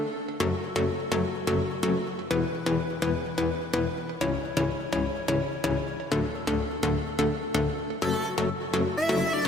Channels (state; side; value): normal; both; correlation 0.66